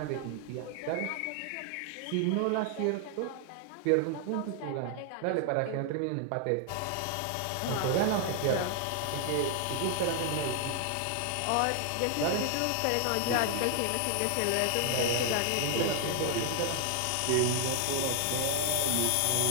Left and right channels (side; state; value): both; different; correlation 0.00